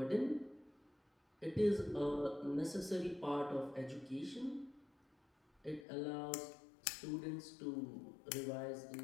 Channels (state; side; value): drops out; right; at 5.9 s